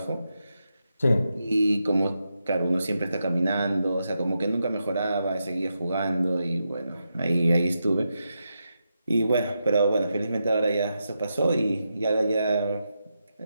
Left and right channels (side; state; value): both; inverted; correlation -0.86